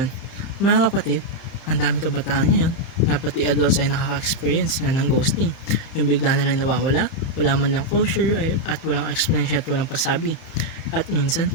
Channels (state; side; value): late; right; 31 ms